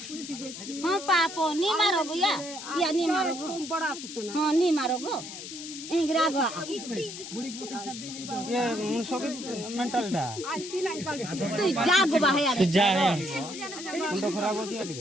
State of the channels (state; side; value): noise; left; hiss, 10 dB below the sound